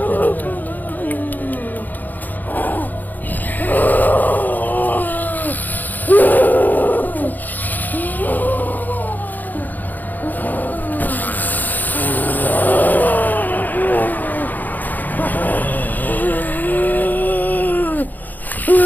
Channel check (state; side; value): late; right; 0.085 ms